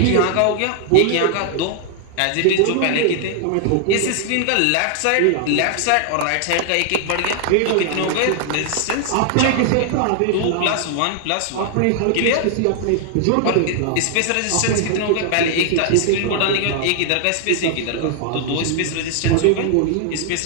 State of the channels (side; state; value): both; different; correlation 0.00